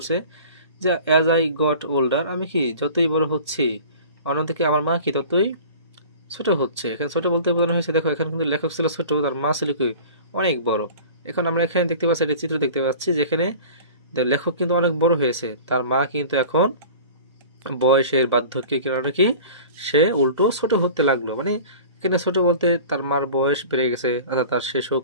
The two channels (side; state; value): both; inverted; correlation -0.41